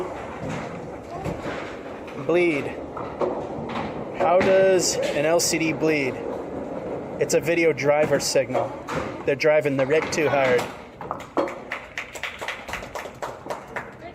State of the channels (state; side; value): identical; both; correlation 1.00